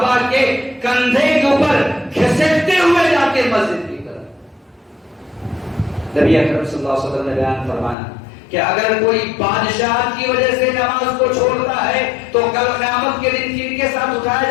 کے کندھے کے اوپر گھسیٹتے ہوئے جاتے مسجد کی طرف. نبی اکرم صلی اللہ علیہ وسلم نے بیان فرمایا کہ اگر کوئی بادشاہ کی وجہ سے نماز کو چھوڑتا ہے تو کل قیامت کے دن کن کے ساتھ اٹھایا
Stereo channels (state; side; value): drops out; right; at 8.0 s